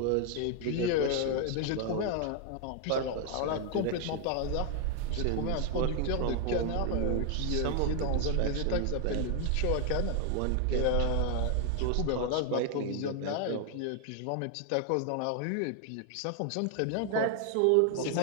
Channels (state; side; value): different; both; correlation 0.00